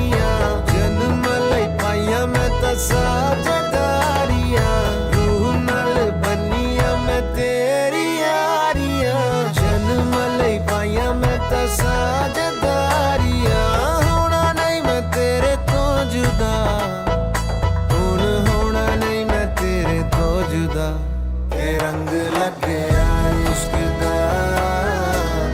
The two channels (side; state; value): both; identical; correlation 1.00